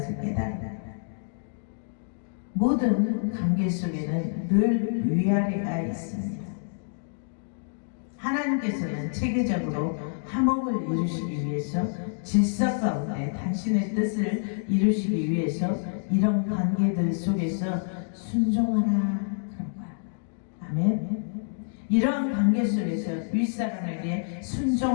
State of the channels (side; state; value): right; silent; digital silence